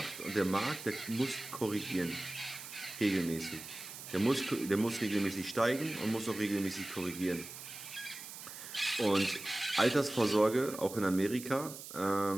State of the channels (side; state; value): right; noise; hiss, 12 dB below the sound